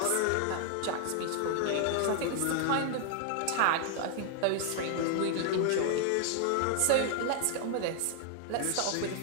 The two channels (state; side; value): different; both; correlation 0.00